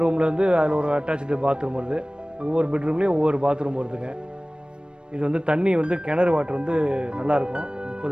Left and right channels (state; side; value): late; left; 0.054 ms